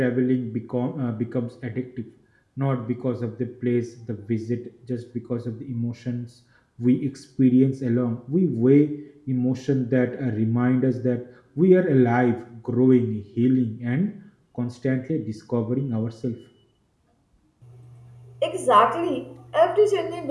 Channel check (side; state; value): both; identical; correlation 1.00